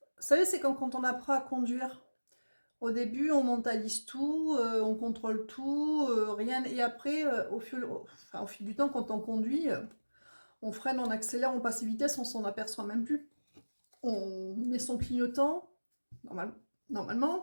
savez, c'est comme quand on apprend à conduire. Au début, on mentalise tout, on contrôle tout, rien. Et après, au fil du temps, quand on conduit, on freine, on accélère, on passe vitesse, on s'en aperçoit même plus. On met son clignotant,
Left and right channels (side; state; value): both; inverted; correlation -1.00